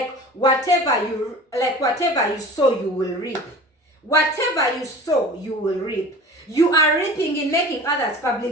you will reap. Whatever you sow, you will reap. You are reaping in making others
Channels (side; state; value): both; normal; correlation 0.40